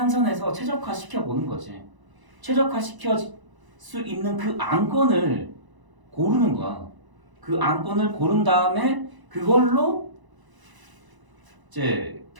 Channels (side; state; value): left; late; 1.0 ms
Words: 최적화 시켜 보는 거지. 최적화 시켜 수 있는 그 안건을 고르는 거야. 그 안건을 고른 다음에 그걸로 이제